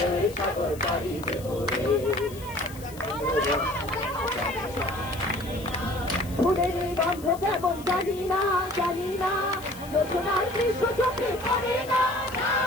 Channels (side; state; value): left; noise; hiss, 19 dB below the sound